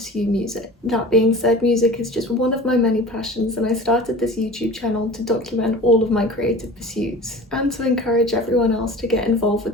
music. That being said, music is just one of my many passions and I started this YouTube channel to document all of my creative pursuits and to encourage everyone else to get involved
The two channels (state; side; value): normal; both; correlation 0.39